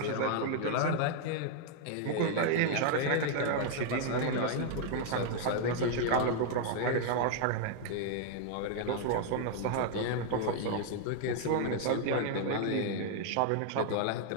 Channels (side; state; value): both; different; correlation -0.01